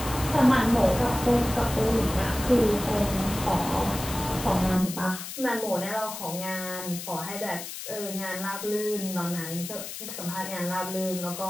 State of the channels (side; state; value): left; noise; hiss, 9 dB below the sound